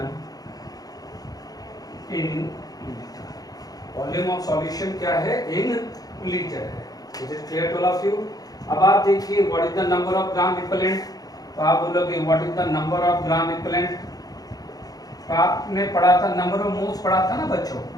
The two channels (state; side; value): late; right; 0.18 ms